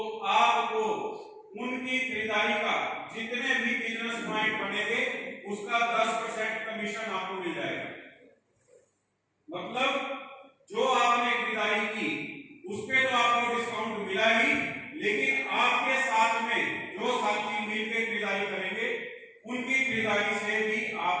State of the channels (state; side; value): identical; both; correlation 1.00